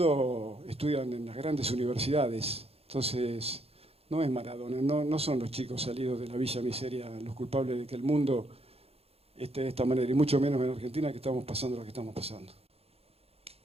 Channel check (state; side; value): late; left; 0.29 ms